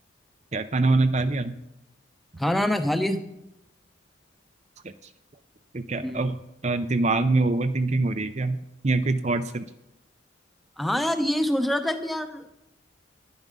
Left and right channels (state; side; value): normal; both; correlation 0.80